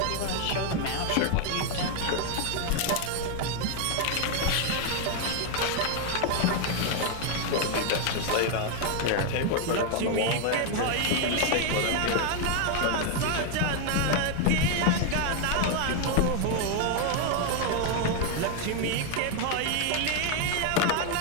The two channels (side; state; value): both; different; correlation 0.01